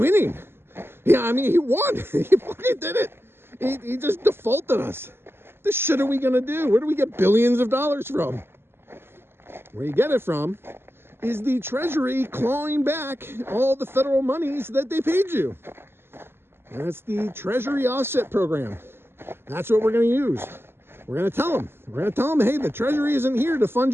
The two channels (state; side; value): late; left; 0.11 ms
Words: Yeah, I mean, he won. He fucking did it. He just defaulted us. What the shit are we going to do? Where do we get billions of dollars from? Where you get it from is the Treasury clawing back all the federal monies that they paid you. And that's the Treasury Offset Program. That's what we're going to use. We're going to tell them. We're going to tell them, hey, the Treasury isn't here to fund